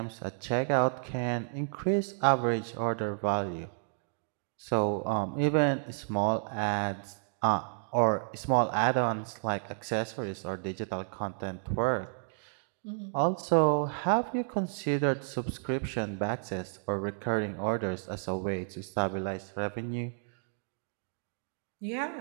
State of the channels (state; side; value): silent; left; digital silence